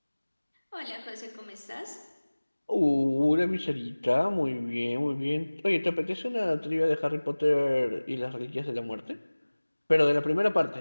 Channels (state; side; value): inverted; both; correlation -1.00